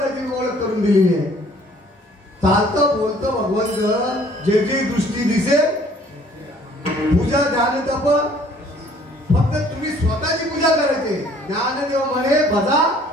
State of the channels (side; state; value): both; normal; correlation 0.57